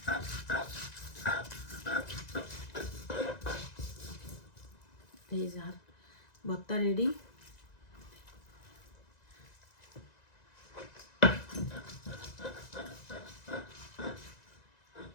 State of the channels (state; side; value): late; right; 1.9 ms